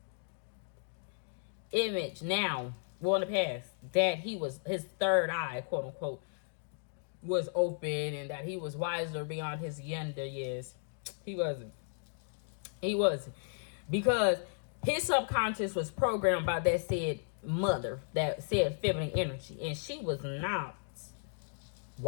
image now, well, in the past, that he was, his third eye, quote unquote, was open and that he was wiser beyond his younger years. He wasn't. He wasn't. Because his subconscious was programmed by that said mother, that said feminine energy. And she was not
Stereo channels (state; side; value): silent; right; digital silence